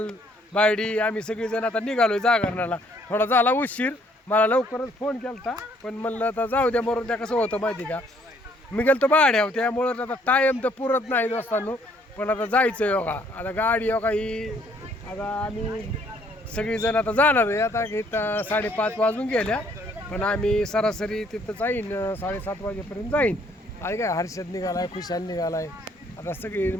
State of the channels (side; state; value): both; normal; correlation 0.64